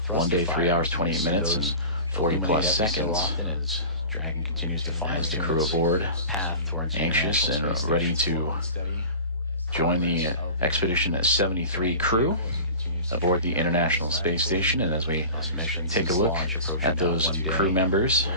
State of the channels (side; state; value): both; inverted; correlation -0.36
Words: 1 day, 3 hours, 28 minutes, and 40 plus seconds. As the crew aboard, anxious and ready to join the Expedition 73 crew aboard the International Space Station. And as we take a look at those crew members